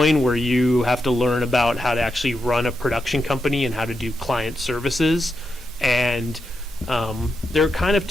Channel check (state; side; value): normal; both; correlation 0.86